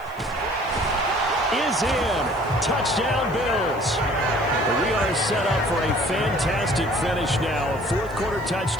is in. Touchdown, Bills. We are set up for a fantastic finish now. A 4th quarter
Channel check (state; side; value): noise; left; hiss, 27 dB below the sound